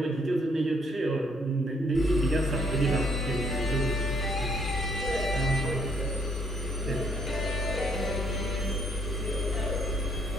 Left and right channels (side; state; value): both; normal; correlation 0.68